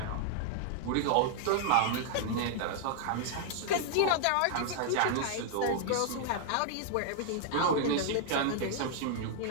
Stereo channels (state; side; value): different; both; correlation -0.01